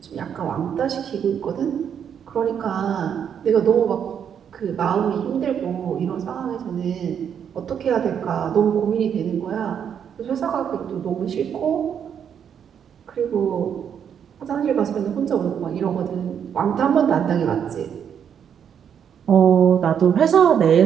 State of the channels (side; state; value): left; quieter; 8.2 dB